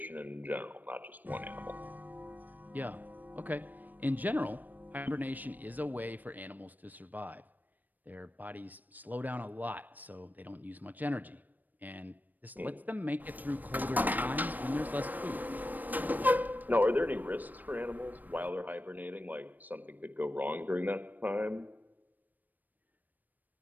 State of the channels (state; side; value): late; left; 0.086 ms